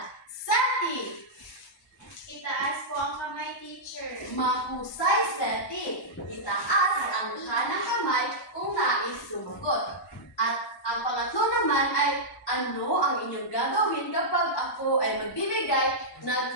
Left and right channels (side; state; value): both; normal; correlation -0.10